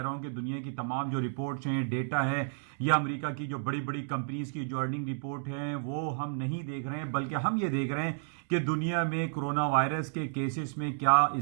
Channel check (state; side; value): silent; left; digital silence